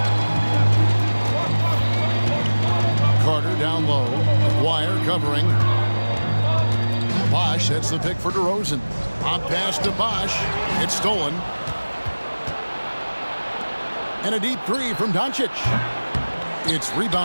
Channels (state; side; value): inverted; both; correlation -1.00